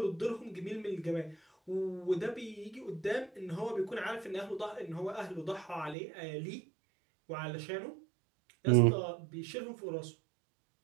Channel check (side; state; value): left; drops out; at 6.0 s